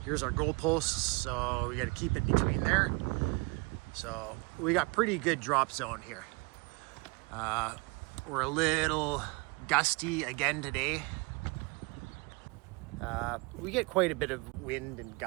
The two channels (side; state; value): left; quieter; 28.1 dB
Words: Here's our goalposts, so we got to keep it between there. So we got pretty good drop zone here. We're a little gusty again today. We get quite a bit of wind and